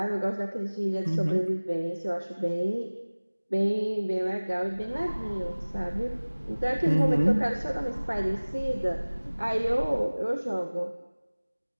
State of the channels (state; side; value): inverted; both; correlation -1.00